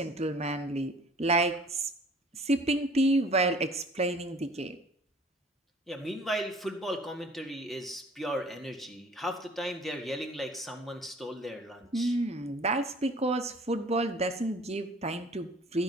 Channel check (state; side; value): normal; both; correlation 0.50